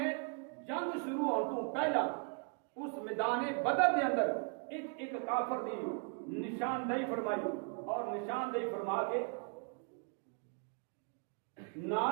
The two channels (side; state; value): left; quieter; 36.4 dB